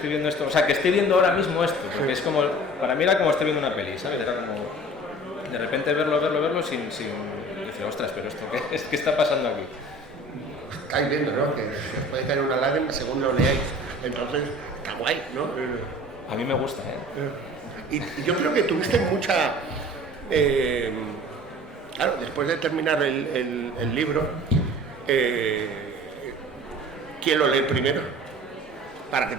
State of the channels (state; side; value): normal; both; correlation 0.44